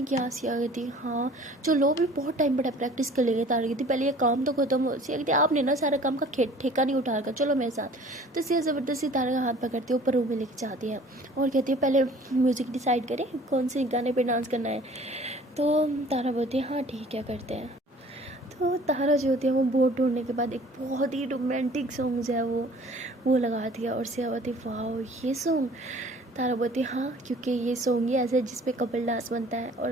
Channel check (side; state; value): both; normal; correlation 0.50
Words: किया। सिया कहती हाँ चलो भी बहुत टाइम बड़ा प्रैक्टिस कर लेंगे। तारा कहती पहले ये काम तो खत्म हो। सिया कहती आपने ना सारा काम का ठेका नहीं उठा रखा, चलो मेरे साथ। तो सिया ज़बरदस्ती तारा का हाथ पकड़ती है, ऊपर रूम में लेके जाती है और कहती है पहले म्यूज़िक डिसाइड करें कौन से गाने पे डांस करना है। तो तारा बोलती है हाँ ठीक है करते हैं। तो तारा जो होती है वो बोर्ड ढूंढने के बाद एक बहुत ही रोमांटिक सॉन्ग जो है वो लगाती है, और सिया बोलती वाह ये सॉन्ग। तारा बोलती हाँ क्योंकि ये सॉन्ग ही ऐसा है जिसपे कपल डांस बनता है, और